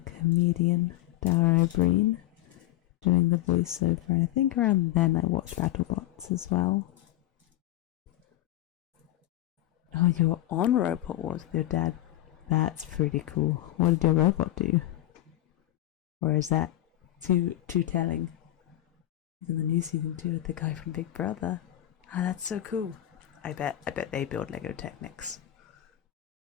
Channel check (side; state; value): right; quieter; 14.6 dB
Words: comedian, Dara O'Brien, doing the voiceover, and I think around then I watched BattleBots as well. Oh, you're on Robot Wars with your dad. That's pretty cool. What did your robot do? Or is that too telling? He's in the new season 2 with the guy from Big Brother. Ah, that's so cool. I bet they build Lego Technics.